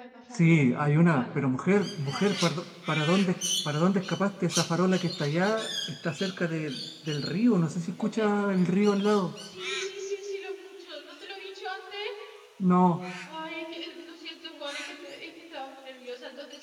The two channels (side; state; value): both; identical; correlation 1.00